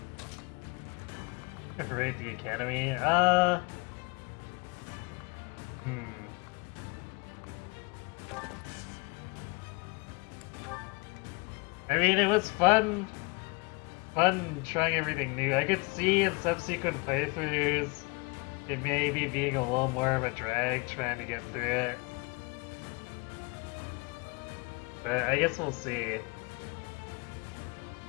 Rate the academy? I mean, it was fun trying everything new. I could see in subsequent playthroughs it may be being a little more of a drag trying to get through it. But I guess we'll see.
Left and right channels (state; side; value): quieter; right; 29.0 dB